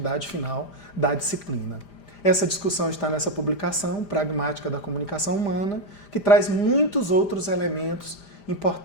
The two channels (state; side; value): late; right; 5.0 ms